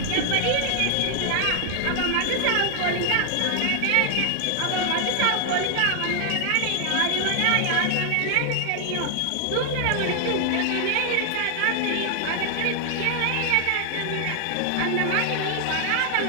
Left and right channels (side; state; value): both; different; correlation 0.00